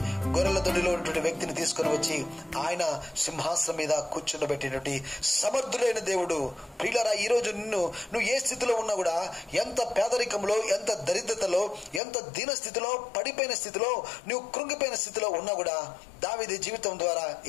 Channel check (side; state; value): right; drops out; at 12.0 s